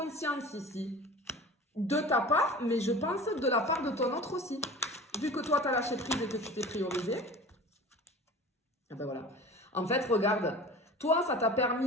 ici. De ta part, mais je pense de la part de ton autre aussi. Vu que toi, tu as lâché prise et que tu t'es priorisé. Et ben voilà. En fait, regarde, toi, ça t'a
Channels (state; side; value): normal; both; correlation 0.39